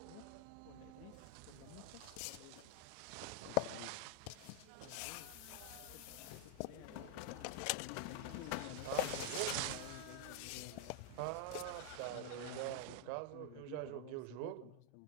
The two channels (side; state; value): both; different; correlation 0.00